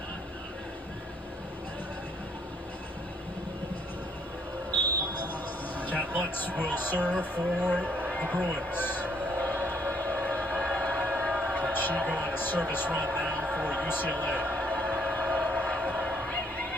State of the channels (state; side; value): normal; both; correlation 0.67